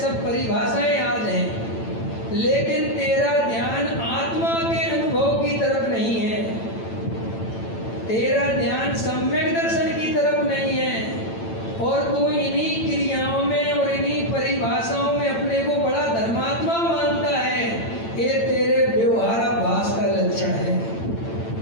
परिभाषाएं याद हैं, लेकिन तेरा ध्यान आत्मा के अनुभव की तरफ नहीं है, तेरा ध्यान सम्यक दर्शन की तरफ नहीं है, और तू इन्हीं क्रियाओं में और इन्हीं परिभाषाओं में अपने को बड़ा धर्मात्मा मानता है। ये तेरे व्यवहाराभास का लक्षण है,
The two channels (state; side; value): late; right; 8.9 ms